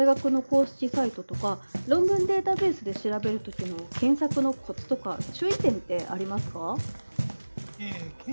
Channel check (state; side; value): inverted; both; correlation -1.00